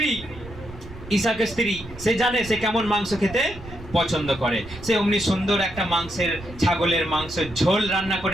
ইসাকের স্ত্রী, সে জানে সে কেমন মাংস খেতে পছন্দ করে, সে অমনি সুন্দর একটা ছাগলের মাংসের ঝোল রান্না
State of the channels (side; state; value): right; noise; rumble, 16 dB below the sound